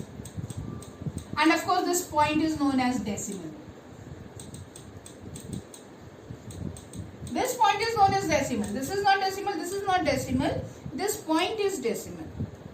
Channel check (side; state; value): both; identical; correlation 1.00